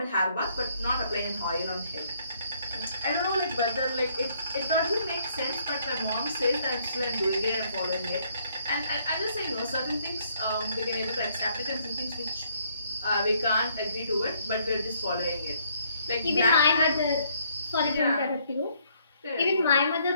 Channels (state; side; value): inverted; both; correlation -0.68